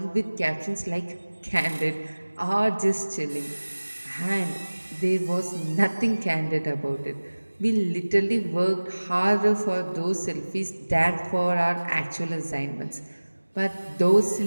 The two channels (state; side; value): inverted; both; correlation -1.00